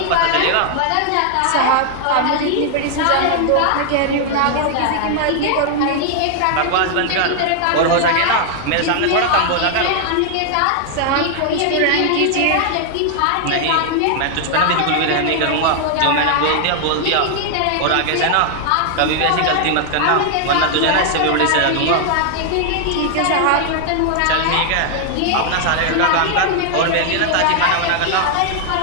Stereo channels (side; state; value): both; different; correlation 0.00